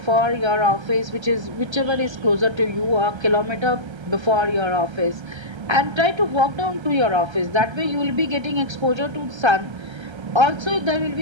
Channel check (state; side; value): late; left; 1.3 ms